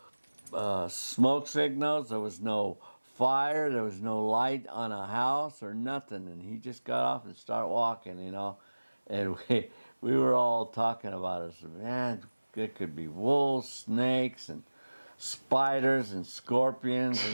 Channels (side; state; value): both; inverted; correlation -1.00